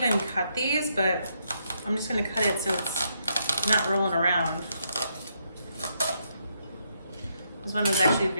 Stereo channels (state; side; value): inverted; both; correlation -0.77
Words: cut these, but I'm just gonna cut it so it's not rolling around. This one was actually